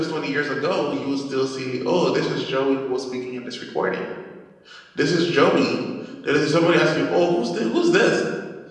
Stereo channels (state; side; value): identical; both; correlation 1.00